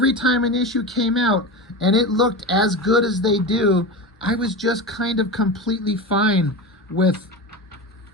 time an issue came out and it looked as good as they do, I was just kind of completely fine with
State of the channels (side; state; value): both; normal; correlation 0.24